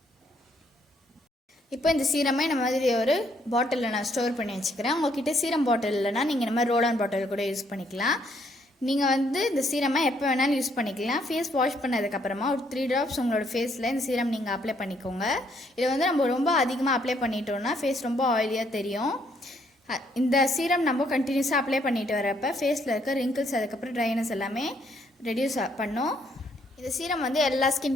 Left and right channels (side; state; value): both; normal; correlation 0.70